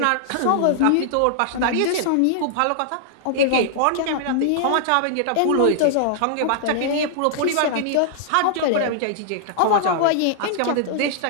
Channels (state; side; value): different; both; correlation -0.01